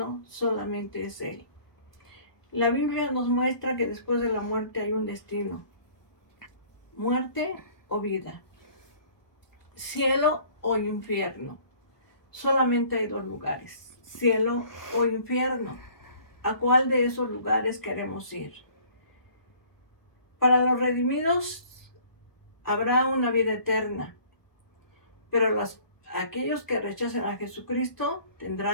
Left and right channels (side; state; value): right; late; 1.2 ms